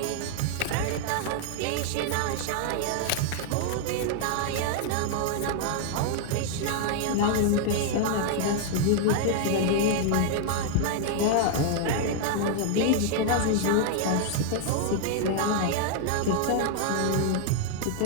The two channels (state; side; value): different; both; correlation 0.00